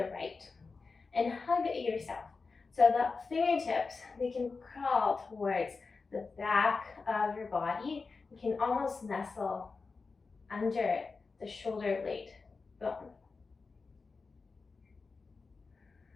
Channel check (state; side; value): quieter; right; 4.4 dB